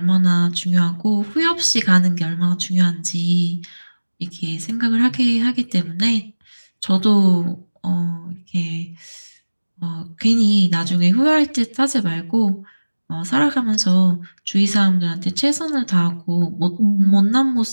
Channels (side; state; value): both; inverted; correlation -1.00